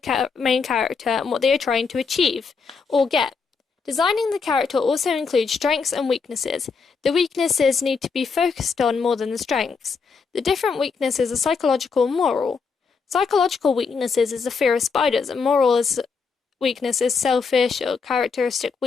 main character and what they are trying to achieve or get. Designing the character also includes strengths and weaknesses. The weaknesses need to be focused on more than the strengths. The different weaknesses are psychological and moral. Psychological weaknesses is the fear of spiders, and moral weakness is selfish or characteristic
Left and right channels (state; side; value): quieter; right; 5.2 dB